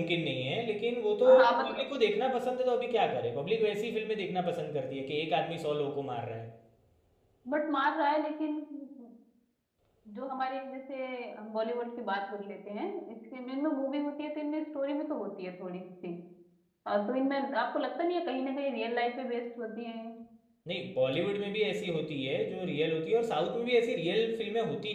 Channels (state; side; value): identical; both; correlation 1.00